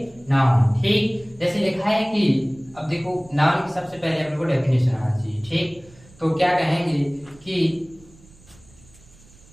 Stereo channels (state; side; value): noise; right; rumble, 26 dB below the sound